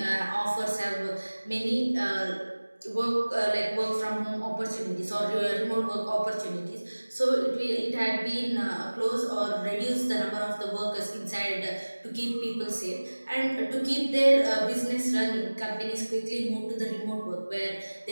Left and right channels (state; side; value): inverted; both; correlation -1.00